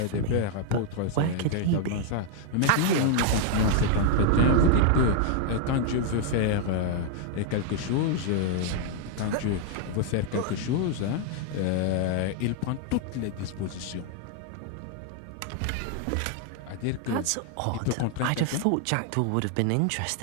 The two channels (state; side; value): different; both; correlation 0.00